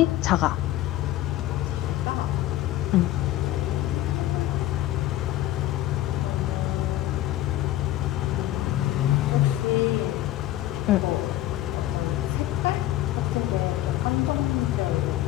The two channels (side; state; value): right; quieter; 14.4 dB